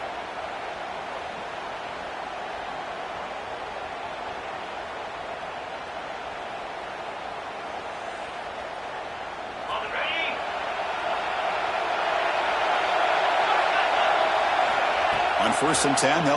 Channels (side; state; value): both; identical; correlation 1.00